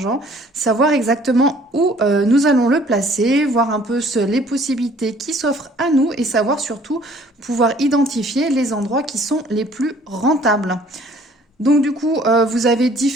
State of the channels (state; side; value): normal; both; correlation 0.56